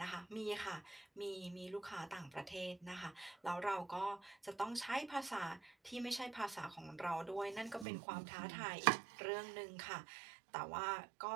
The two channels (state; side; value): drops out; left; at 7.9 s